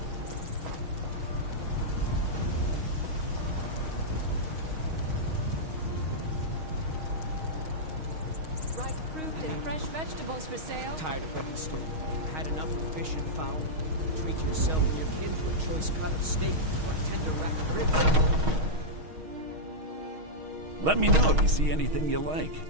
Ripe fruit and fresh vegetables for sale. Tired of wedding stew? Had enough of fish and fowl? Treat yourself and your kin to a choice cut of steak or a tender rack of ribs. Let me know if you see anything you like.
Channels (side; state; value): left; late; 6.4 ms